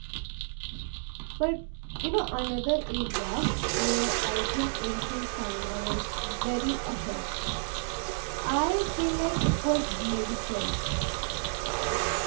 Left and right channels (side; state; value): left; silent; digital silence